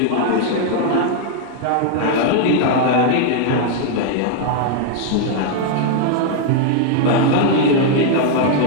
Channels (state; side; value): different; both; correlation 0.00